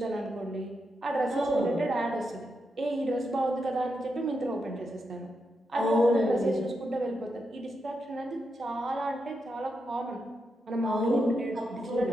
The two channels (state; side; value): normal; both; correlation 0.84